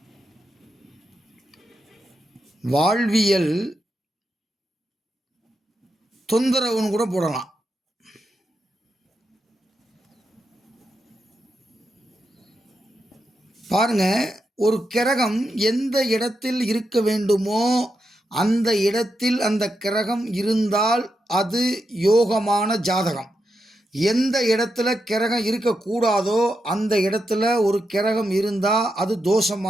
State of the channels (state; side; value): normal; both; correlation 0.86